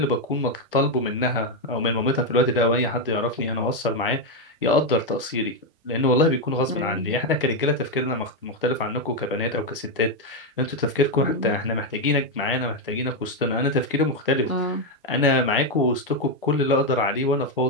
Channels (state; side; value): normal; both; correlation 0.04